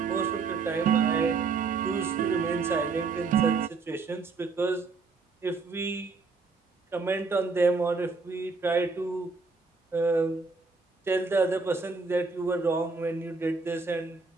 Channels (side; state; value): left; quieter; 4.4 dB